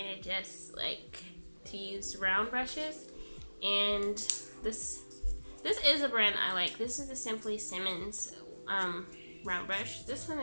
of just like to use round brushes, and this is a brand I like. This is the Simmons round brush. This one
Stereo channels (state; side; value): inverted; both; correlation -1.00